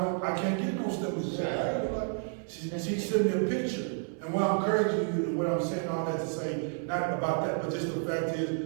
I can't get no stimulus check. She sent me a picture. And what I'm encouraging you, and what I'm saying all that to say, not about that, but just the fact is,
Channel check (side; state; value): left; silent; 57 dB below the other